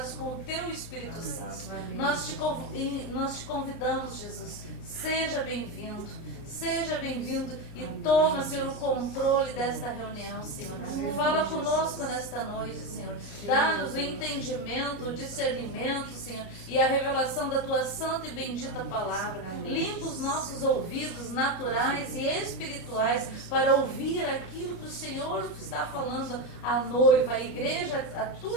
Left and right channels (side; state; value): right; late; 29 ms